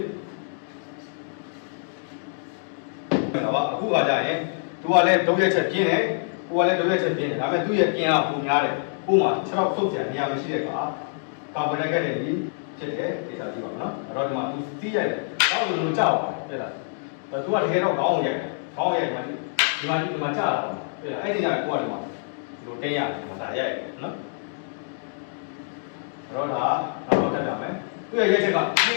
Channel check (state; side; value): silent; right; digital silence